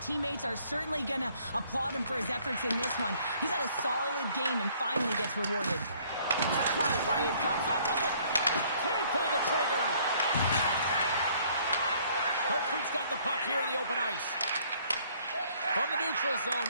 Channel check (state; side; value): inverted; both; correlation -0.61